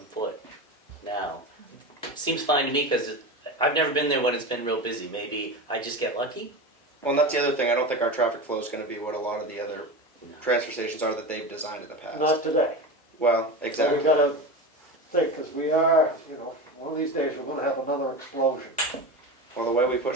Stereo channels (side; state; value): both; normal; correlation 0.25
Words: foot now. Seems fine to me because I've never been there when it's been real busy. Maybe I just get lucky. Well, and that's the other thing. I don't think our traffic flow is going to be what a lot of the other transfer stations are that they've designed in the past. Not today. Well, So exactly. we gotta think, because we are, one of these days we're gonna have another explosion. Well, the way we